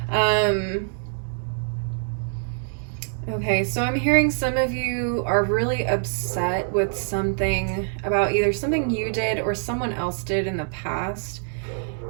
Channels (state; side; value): silent; left; digital silence